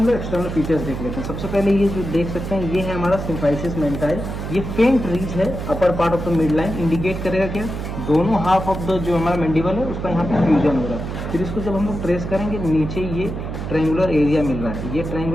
लोग एक्सटर्नल फीचर्स देख लेते हैं। सबसे पहले ये जो देख सकते हैं, ये है हमारा सिम्फाइसिस मेंटाइल। ये फेंट रीज है upper part of the mid line, indicate करेगा क्या, दोनों हाफ ऑफ द जो हमारा मैंडिबल है उसका यहाँ पे फ्यूजन हो रहा है। फिर इसको जब हम लोग ट्रेस करेंगे, नीचे ये ट्रायंगुलर एरिया मिल रहा है। ये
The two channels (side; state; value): right; noise; hum, 6 dB below the sound